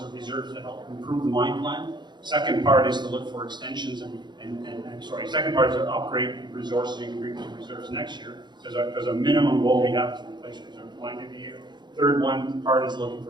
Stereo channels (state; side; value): late; left; 0.21 ms